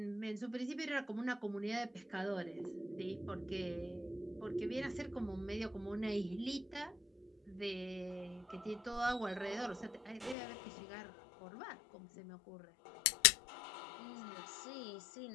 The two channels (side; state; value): right; drops out; at 10.4 s